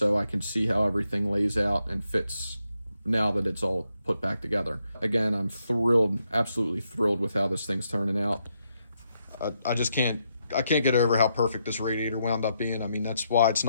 I can see how everything lays out and fits now that it's all put back together. Again, I'm thrilled, absolutely thrilled with how this thing's turning out. I can't get over how perfect this radiator wound up being. I mean, that's why it's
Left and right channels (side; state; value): both; inverted; correlation -0.80